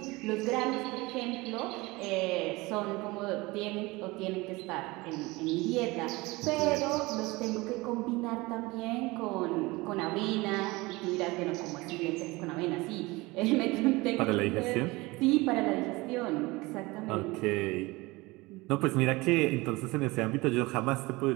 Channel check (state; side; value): quieter; left; 22.4 dB